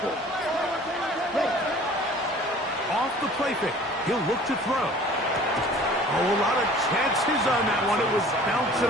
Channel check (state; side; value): normal; both; correlation 0.48